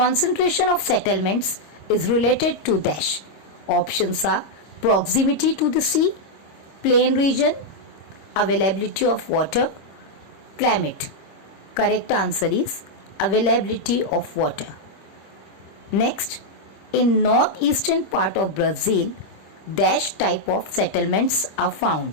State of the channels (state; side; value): late; right; 26 ms